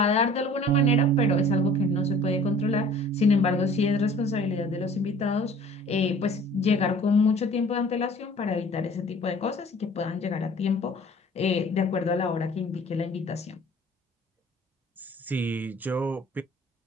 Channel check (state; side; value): normal; both; correlation 0.49